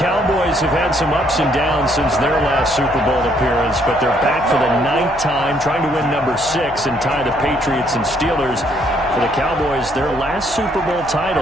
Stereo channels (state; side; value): noise; left; hum, 18 dB below the sound